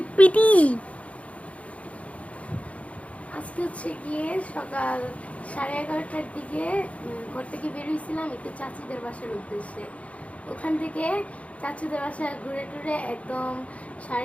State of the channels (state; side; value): late; right; 0.065 ms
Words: pity. আজকে হচ্ছে গিয়ে সকাল 11:30টার দিকে ঘর থেকে বেরিয়েছিলাম একটু চাচিদের বাসার উদ্দেশ্যে। ওখান থেকে চাচিদের বাসায় ঘুরে টুরে একদম